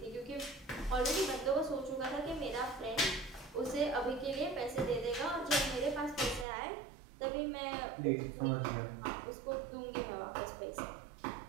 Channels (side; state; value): left; drops out; at 6.5 s